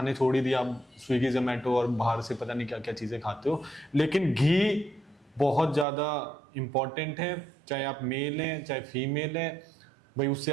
छोड़ ही दिया। आप स्विगी जोमेटो और बाहर से पता नहीं क्या क्या चीज़ें खाते हो, लेकिन घी बहुत ज़्यादा इम्पॉर्टेंट है। चाहे आप मेल हैं चाहे फीमेल हैं, भाई उससे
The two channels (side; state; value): left; drops out; at 5.9 s